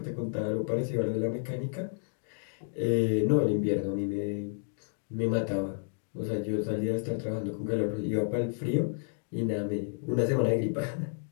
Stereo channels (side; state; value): right; silent; digital silence